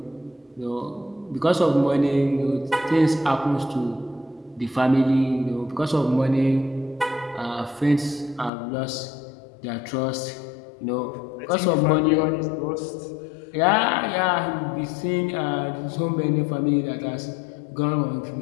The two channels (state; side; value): drops out; right; at 8.5 s